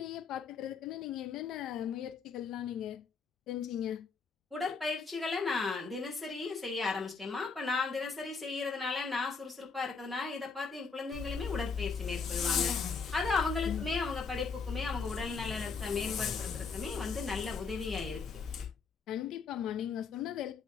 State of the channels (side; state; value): right; quieter; 5.1 dB